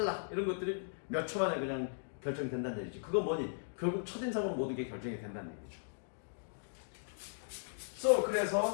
이런 것들이 몇 초 만에 그냥 결정된다는 얘기지. 그건 뭐니? 결국 첫인상으로 모든 게 결정이 된다는 얘기죠. So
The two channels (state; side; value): silent; right; digital silence